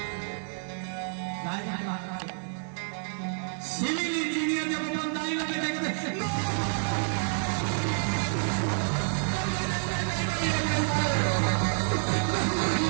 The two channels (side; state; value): left; silent; digital silence